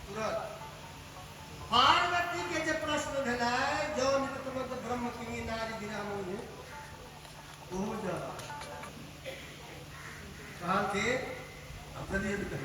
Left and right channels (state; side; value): identical; both; correlation 1.00